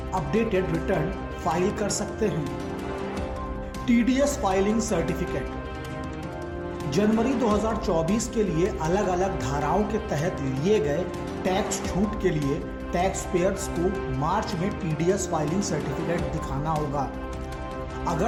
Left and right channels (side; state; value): both; identical; correlation 1.00